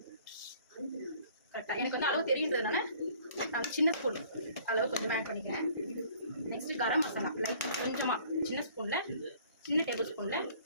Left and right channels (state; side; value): inverted; both; correlation -0.55